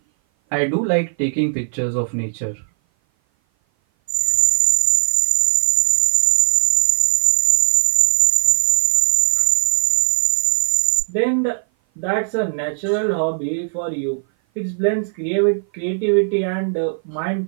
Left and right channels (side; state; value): left; silent; 57 dB below the other